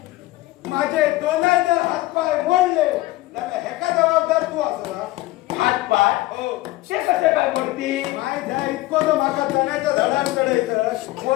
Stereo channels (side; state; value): right; quieter; 18.1 dB